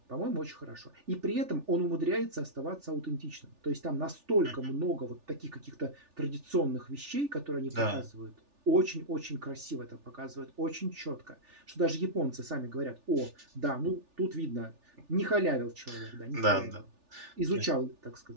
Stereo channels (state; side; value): late; left; 3.4 ms